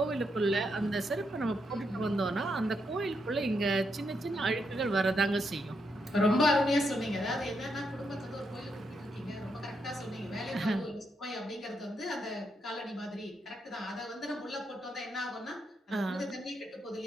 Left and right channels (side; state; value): both; normal; correlation 0.80